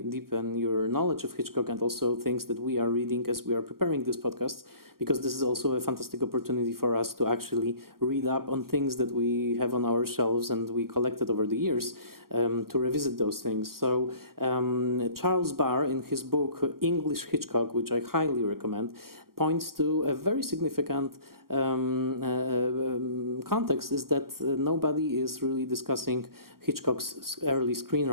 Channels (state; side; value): late; left; 0.93 ms